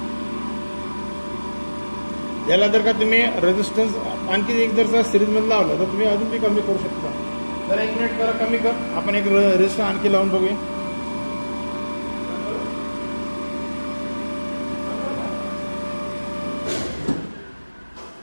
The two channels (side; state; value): both; inverted; correlation -1.00